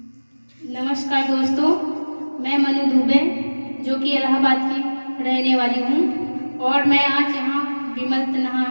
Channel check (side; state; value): both; inverted; correlation -1.00